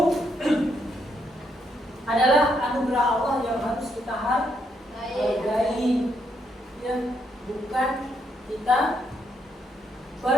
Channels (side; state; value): both; normal; correlation 0.76